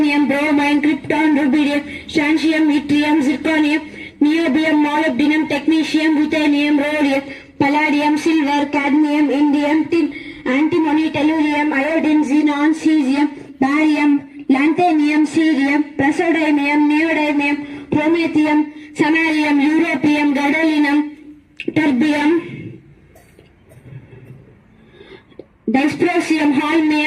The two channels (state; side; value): identical; both; correlation 1.00